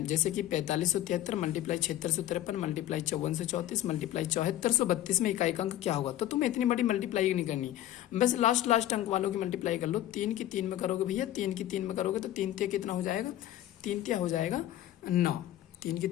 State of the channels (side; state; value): right; quieter; 13.3 dB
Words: जैसे कि 4573 मल्टीप्लाई 7653 मल्टीप्लाई 5434 मल्टीप्लाई 7432 में इकाई का अंक क्या होगा? तो तुम्हें इतनी बड़ी मल्टीप्लाई नहीं करनी, बस लास्ट अंक वालों की मल्टीप्लाई कर लो। 3 की 3 में करोगे भैया, 3 की 3 में करोगे तो 3 तिया कितना हो जाएगा? 3 तिया हो जाएगा 9। 3 की